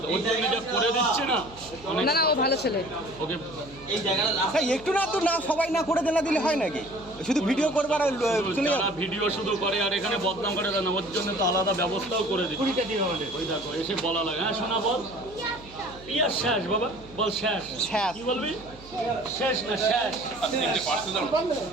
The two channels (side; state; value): right; noise; hum, 21 dB below the sound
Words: করে দিচ্ছে না, না ও ভালো ছেলে। ওকে একটু না তো না, সবাই না করে দেনা দিলে হয় নাকি? শুধু ভিডিও করবার ভিডিও শুধু করে আর এখানে বদনাম করে দেয় না, ওর জন্য তো আলাদা ব্যবস্থাও করে দিচ্ছে। ওই দেখো এসে বলা লাগে, হ্যাঁ শোনা বল, পিয়া শেষ বাবা, বল শেষ। কি বলবি? শেষ না শেষ,